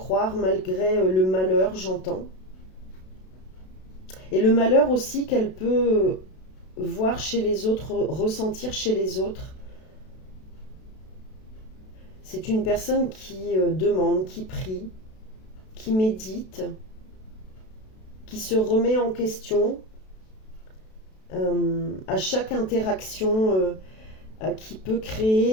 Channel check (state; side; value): late; right; 32 ms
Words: malgré le malheur, j'entends. Et le malheur aussi qu'elle peut voir chez les autres, ressentir chez les autres. C'est une personne qui demande, qui prie, qui médite, qui se remet en question à chaque interaction qui peut